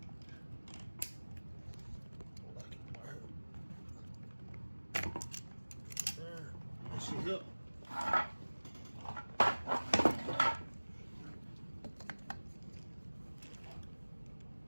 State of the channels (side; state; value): both; inverted; correlation -1.00